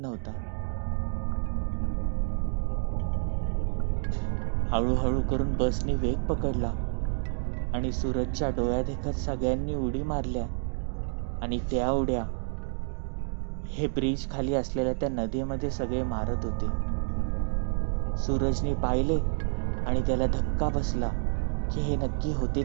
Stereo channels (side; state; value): left; silent; 59 dB below the other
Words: हळूहळू करून बसने वेग पकडला आणि सूरजच्या डोळ्यात देखत सगळ्यांनी उडी मारल्या आणि त्या उड्या हे ब्रिज खाली असलेल्या त्या नदीमध्ये सगळे मारत होते. सूरजने पाहिले आणि त्याला धक्का बसला की हे नक्की होते